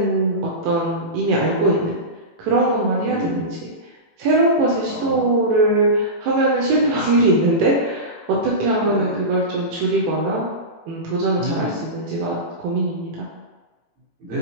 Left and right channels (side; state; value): left; late; 18 ms